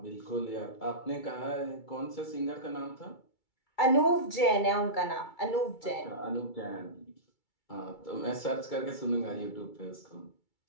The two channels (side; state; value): right; late; 2.3 ms